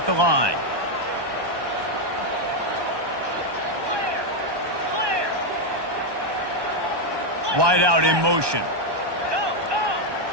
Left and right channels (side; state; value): left; late; 1.2 ms